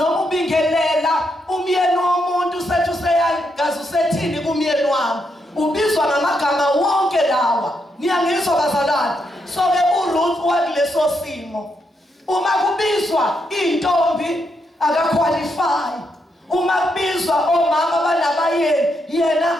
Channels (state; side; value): normal; both; correlation 0.80